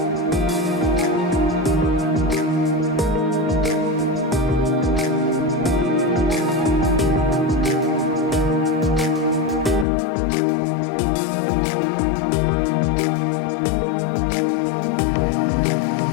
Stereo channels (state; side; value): drops out; right; at 9.9 s